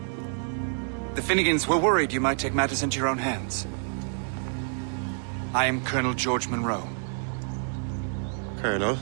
The Finnegans were worried you might take matters into your own hands. I am Colonel George Monroe. Colonel?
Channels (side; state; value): left; silent; 58 dB below the other